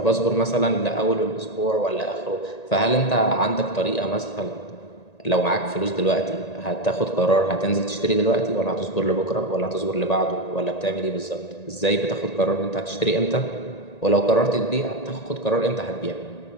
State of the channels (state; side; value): late; right; 1.8 ms